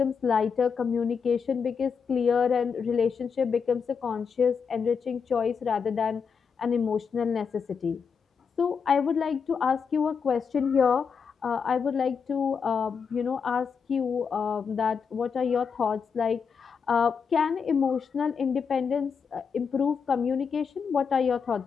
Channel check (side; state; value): right; quieter; 6.1 dB